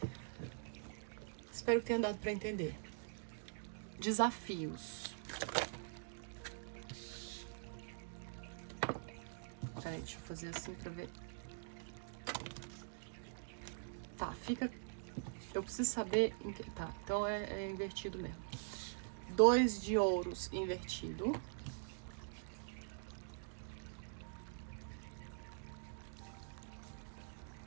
Espero que tenha dado para entender. Desafios. Peraí, deixa eu fazer assim pra ver. Tá, fica... Eu preciso saber... Tá, então é invertido mesmo. 2 de ouros invertido.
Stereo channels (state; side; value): silent; left; digital silence